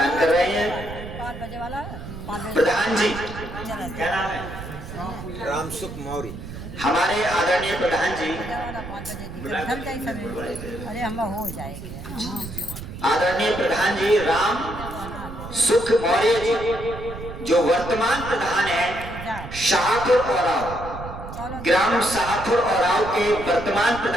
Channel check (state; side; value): noise; right; rumble, 11 dB below the sound